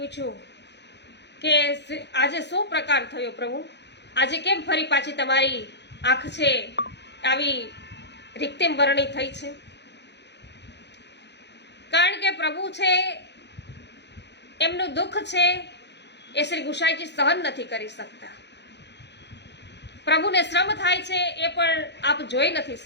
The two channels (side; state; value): right; late; 0.50 ms